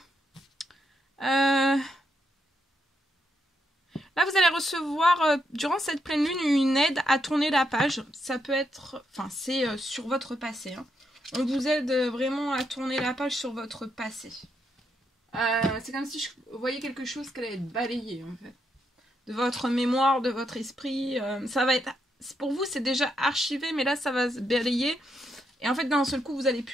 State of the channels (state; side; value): normal; both; correlation 0.79